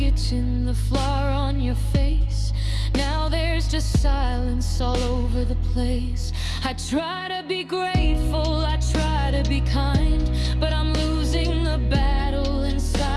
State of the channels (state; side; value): identical; both; correlation 1.00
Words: the flour on your face. Now there's just silence all over the place. I try to be grateful, I try to be kind, but I'm losing the battle